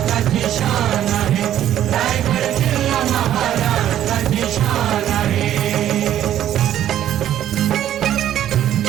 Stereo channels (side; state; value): left; quieter; 11.5 dB